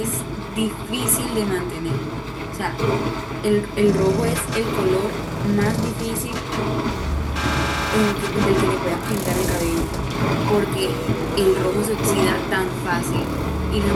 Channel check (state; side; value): identical; both; correlation 1.00